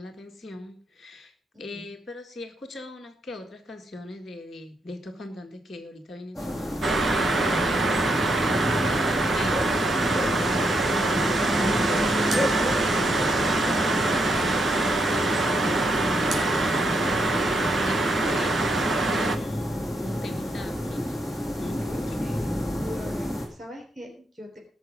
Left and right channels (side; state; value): both; normal; correlation 0.79